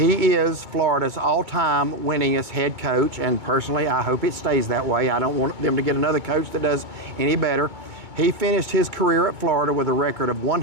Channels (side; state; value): left; late; 2.2 ms